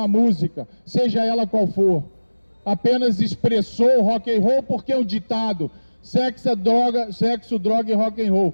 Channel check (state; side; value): inverted; both; correlation -1.00